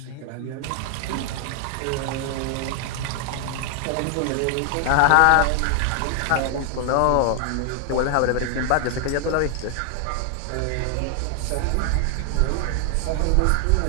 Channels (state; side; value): different; both; correlation 0.00